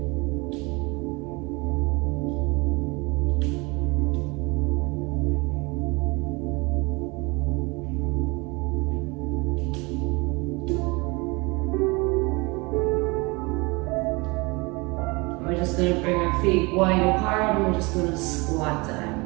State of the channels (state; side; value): quieter; left; 26.4 dB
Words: We're just going to bring our feet wide apart and we're just going to squat down.